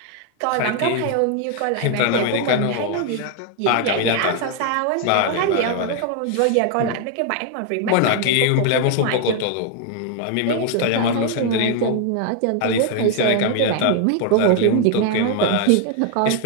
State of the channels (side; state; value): both; different; correlation 0.00